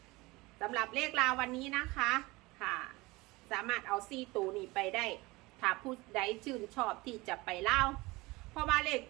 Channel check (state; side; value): quieter; left; 22.3 dB